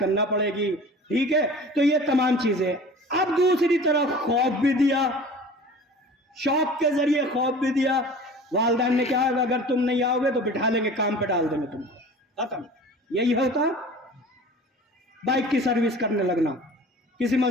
پڑے گی، ٹھیک ہے؟ تو یہ تمام چیزیں. اب دوسری طرف خوف بھی دیا، شوق کے ذریعے خوف بھی دیا. والدین نے کہا اگر تم نہیں آؤ گے تو بٹھا لیں گے، کام پہ ڈال دیں گے تم کو، ختم. یہی ہوتا، بائک کی سروس کرنے لگنا، کسی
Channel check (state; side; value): normal; both; correlation 0.41